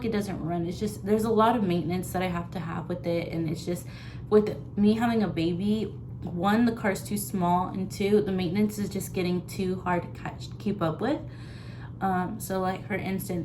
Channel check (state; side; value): identical; both; correlation 1.00